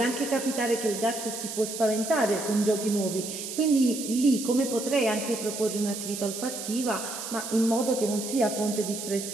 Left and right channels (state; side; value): noise; right; hiss, 7 dB below the sound